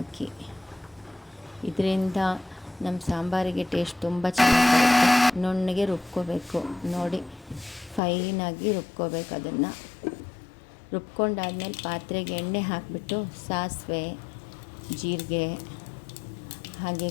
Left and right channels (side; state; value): right; drops out; at 8.0 s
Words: ಇದರಿಂದ ನಮ್ಮ ಸಾಂಬಾರಿಗೆ ಟೇಸ್ಟ್ ತುಂಬ ಚೆನ್ನಾಗಿ ಬರುತ್ತೆ. ನುಣ್ಣಗೆ ರುಬ್ಕೋಬೇಕು. ನೋಡಿ, ಫೈನಾಗಿ ರುಬ್ಕೋಬೇಕು. ಅದನ್ನು ರುಬ್ಕೊಂಡಾದ್ಮೇಲೆ ಪಾತ್ರೆಗೆ ಎಣ್ಣೆ ಹಾಕಿಬಿಟ್ಟು ಸಾಸಿವೆ, ಜೀರಿಗೆ ಹಾಗೆ